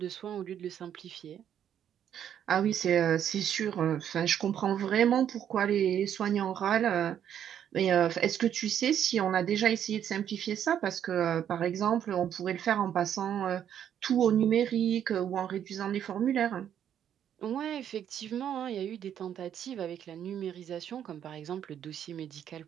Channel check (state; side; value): quieter; left; 9.6 dB